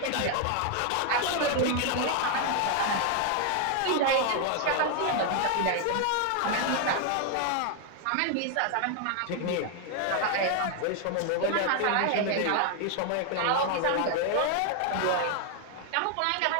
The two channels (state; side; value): different; both; correlation 0.00